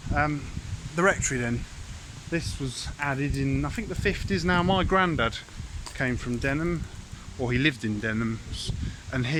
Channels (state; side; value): identical; both; correlation 1.00